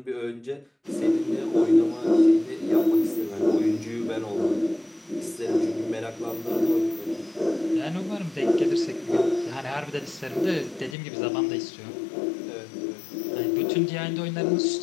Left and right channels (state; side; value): drops out; right; at 11.0 s